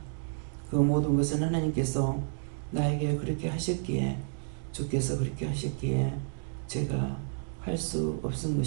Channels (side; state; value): left; silent; digital silence